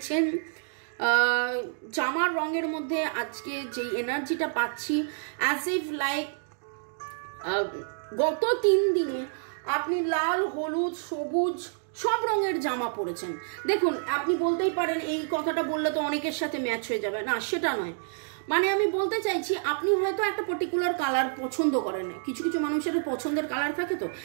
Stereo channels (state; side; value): silent; left; digital silence